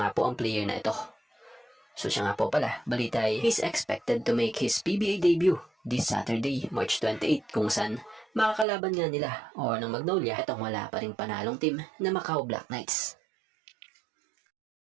po ang player na ito. So siya nga po pala, balita ay he's expected to make his PBA debut this Saturday, March 28 kung saan makakalaban nga nila o ng Magnolia itong wala pa ring panalong team na Macau Black Knights.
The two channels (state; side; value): drops out; left; at 8.7 s